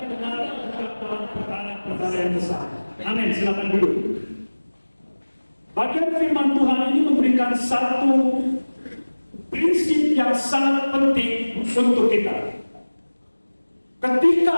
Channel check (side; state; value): both; inverted; correlation -1.00